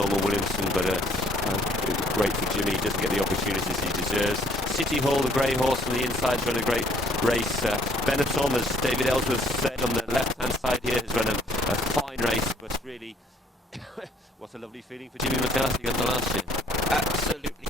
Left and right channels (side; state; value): both; normal; correlation 0.62